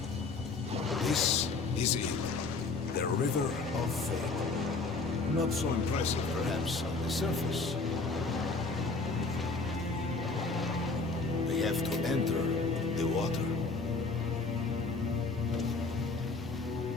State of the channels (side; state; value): right; quieter; 3.8 dB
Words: This is it. The River of Fate. Not so impressive, perhaps, on the surface. We have to enter the water.